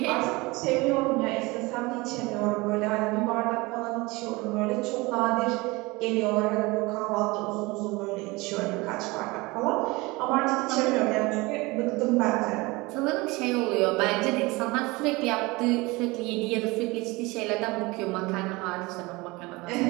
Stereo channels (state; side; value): quieter; left; 23.3 dB